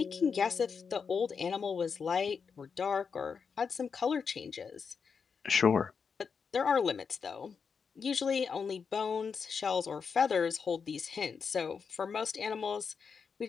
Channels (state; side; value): quieter; right; 5.9 dB